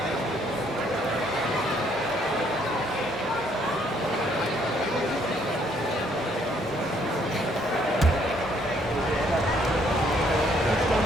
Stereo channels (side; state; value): both; normal; correlation 0.67